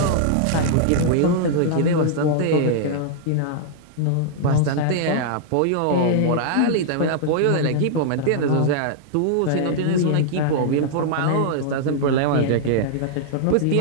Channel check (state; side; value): different; both; correlation -0.01